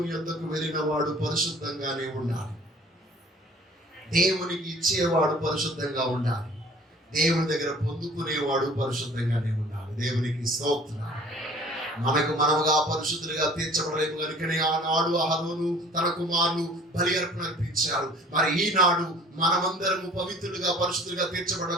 యొద్దకు వెళ్ళిన వాడు పరిశుద్ధంగానే ఉండాలి. దేవునికి ఇచ్చేవాడు పరిశుద్ధంగా ఉండాలి. దేవుని దగ్గర పొందుకునేవాడు పరిశుద్ధంగానే ఉండాలి. దేవునికి స్తోత్రం. మనకు మనముగా పరిశుద్ధులుగా తీర్చబడలేము కనుకనే ఆనాడు అహరోను తన కుమారులు బలి అర్పణ అర్పించారు. మరి ఈనాడు మనమందరము పవిత్రులుగా పరిశుద్ధులుగా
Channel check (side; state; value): both; normal; correlation 0.50